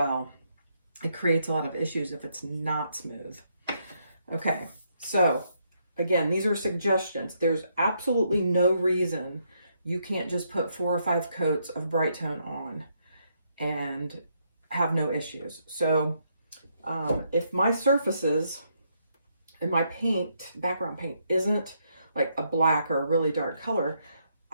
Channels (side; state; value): both; inverted; correlation -0.76